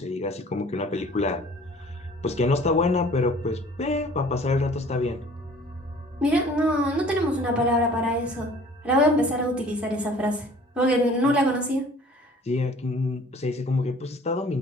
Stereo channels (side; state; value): both; normal; correlation 0.50